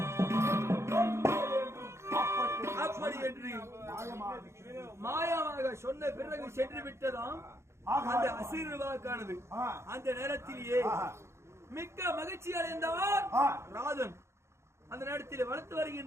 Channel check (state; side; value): late; left; 0.13 ms